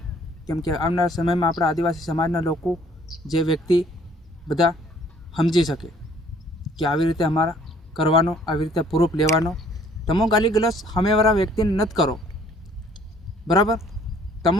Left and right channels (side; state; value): both; normal; correlation 0.58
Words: કેમ કે આવનારા સમયમાં આપણા આદિવાસી સમાજના લોકો જે વ્યક્તિ બધા સમજી શકે કે આવી રીતે અમારા કરવાનો આવી રીતે પ્રૂફ લેવાનો તમે ગાલી ગલોચ સામેવાળા વ્યક્તિને નથી કરો બરાબર